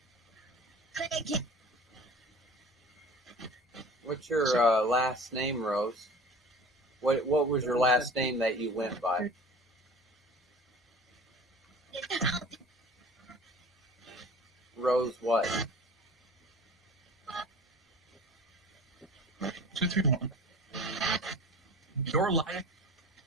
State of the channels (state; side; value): normal; both; correlation 0.41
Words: What's your last name, Rose? What was your last name that you went by? Rose what? 231. Your life.